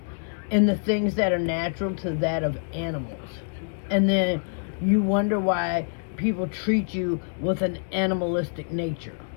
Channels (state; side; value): silent; right; digital silence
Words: in the things that are natural to that of animals. And then you wonder why people treat you with an animalistic nature.